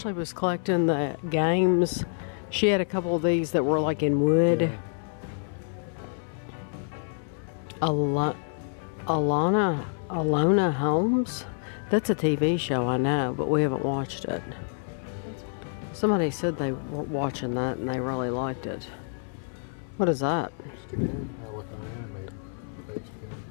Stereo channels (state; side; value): silent; right; 58 dB below the other